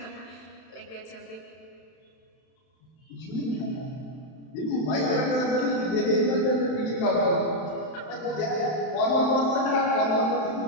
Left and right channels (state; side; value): late; right; 31 ms